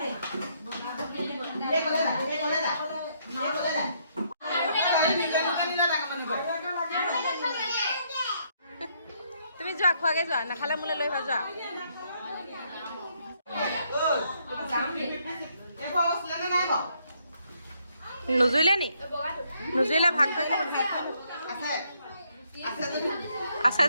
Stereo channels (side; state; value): both; inverted; correlation -0.72